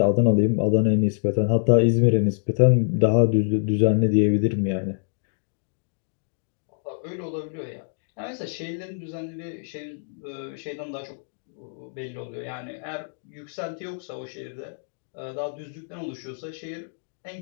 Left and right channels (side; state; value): right; silent; digital silence